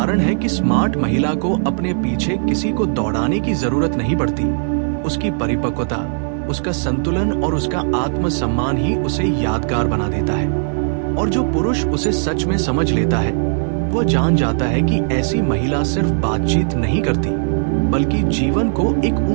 है कि स्मार्ट महिला को अपने पीछे किसी को दौड़ाने की जरूरत नहीं पड़ती। उसकी परिपक्वता, उसका संतुलन और उसका आत्मसम्मान ही उसे यादगार बना देता है। और जो पुरुष उसे सच में समझ लेता है, वो जान जाता है कि ऐसी महिला सिर्फ बातचीत नहीं करती, बल्कि जीवन को एक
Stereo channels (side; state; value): left; silent; digital silence